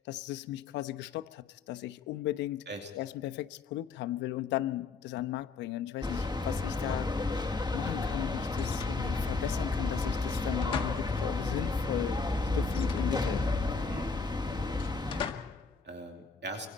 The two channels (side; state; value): right; quieter; 4.6 dB